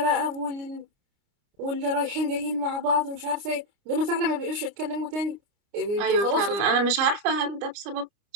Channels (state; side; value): late; left; 29 ms